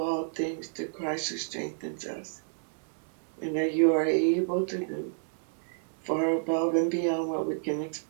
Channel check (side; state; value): left; silent; 58 dB below the other